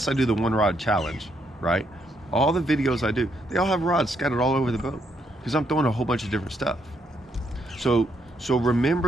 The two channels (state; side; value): normal; both; correlation 0.75